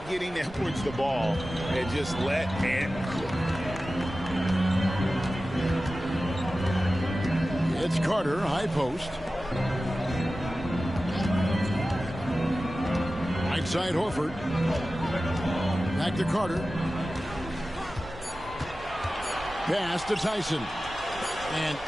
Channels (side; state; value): right; noise; rumble, 17 dB below the sound